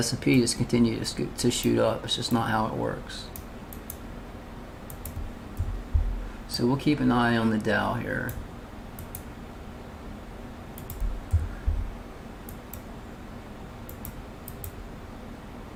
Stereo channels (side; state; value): both; identical; correlation 1.00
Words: just continue to shoot up. It's just not how it works. So we'll keep an eye on the Dow here.